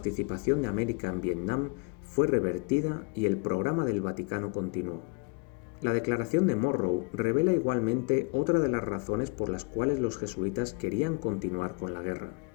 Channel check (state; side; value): quieter; right; 33.0 dB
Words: de América en Vietnam fue revertida y el programa del Vaticano continuó. La declaración de Monroe revela igualmente otra de las razones por las cuales los jesuitas querían continuar con la guerra,